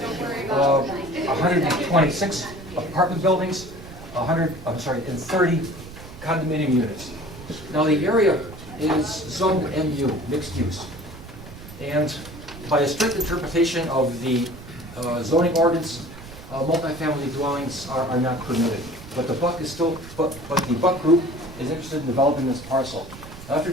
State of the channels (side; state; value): right; noise; rumble, 15 dB below the sound